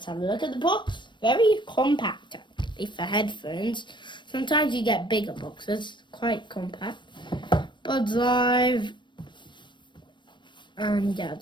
have a look at the box. Very compact actually for headphones. Sometimes you get bigger boxes, quite compact. Buds Live, and yeah,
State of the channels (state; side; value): late; right; 0.22 ms